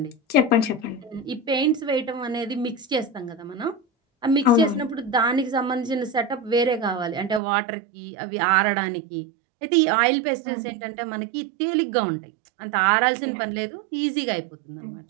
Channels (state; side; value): drops out; left; at 7.4 s